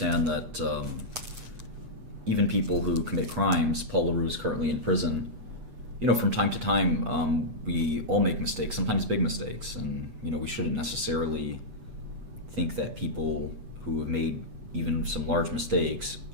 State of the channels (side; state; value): left; late; 8.1 ms